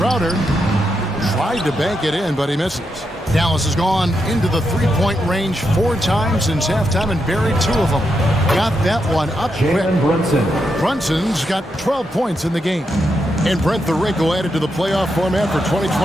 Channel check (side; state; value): both; normal; correlation 0.83